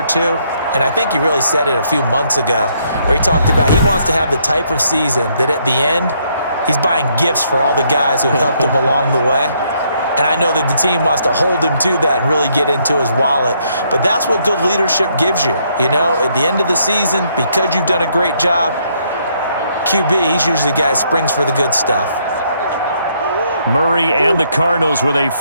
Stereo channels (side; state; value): both; inverted; correlation -0.71